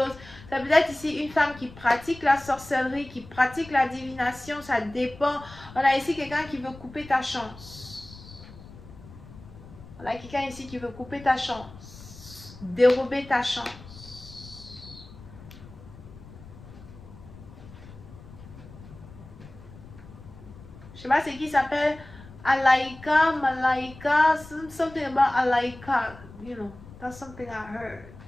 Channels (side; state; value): left; noise; rumble, 18 dB below the sound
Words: Ça peut être ici une femme qui pratique la sorcellerie, qui pratique la divination, ça dépend. On a ici quelqu'un qui veut couper ta chance. On a quelqu'un ici qui veut couper ta chance, dérober ta chance. Je sais pas c'est qui s'appelle Alaika, Malaika, something about Alaika, you know, that's something I heard.